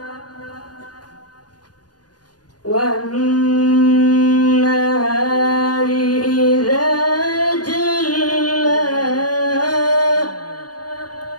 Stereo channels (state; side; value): late; right; 0.69 ms